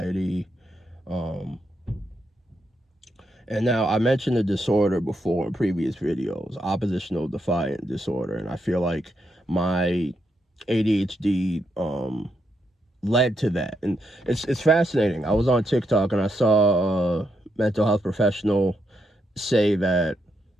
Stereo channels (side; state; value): both; normal; correlation 0.81